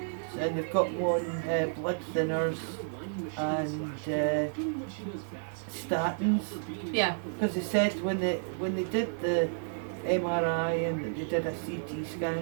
And they've got him on blood thinners and statins. Yeah. Because they said when they did the MRI and they did a CT scan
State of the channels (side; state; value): left; silent; digital silence